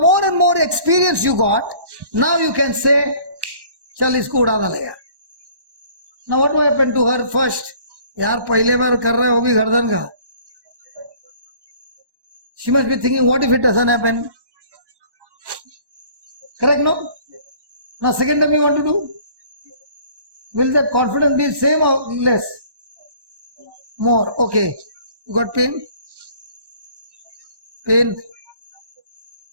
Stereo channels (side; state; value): left; late; 1.1 ms